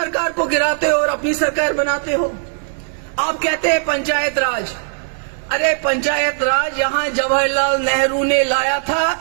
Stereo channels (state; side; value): silent; left; 63 dB below the other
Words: को गिराते हो और अपनी सरकार बनाते हो। आप कहते हैं पंचायत राज। अरे पंचायत राज यहाँ जवाहरलाल नेहरू ने लाया था,